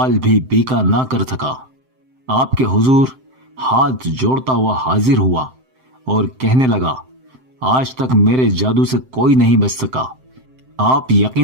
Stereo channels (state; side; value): late; left; 7.7 ms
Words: بھی بیکا نہ کر سکا۔ آپ کے حضور ہاتھ جوڑتا ہوا حاضر ہوا اور کہنے لگا، آج تک میرے جادو سے کوئی نہیں بچ سکا۔ آپ